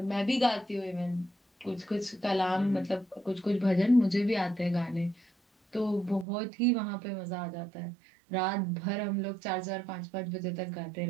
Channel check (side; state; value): left; drops out; at 6.2 s